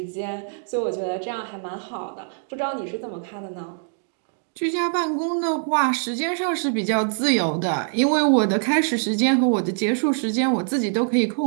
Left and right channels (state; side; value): silent; left; digital silence